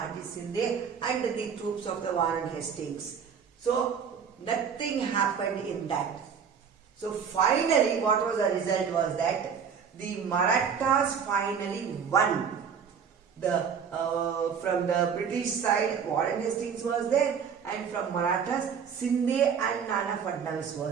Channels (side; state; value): left; quieter; 6.9 dB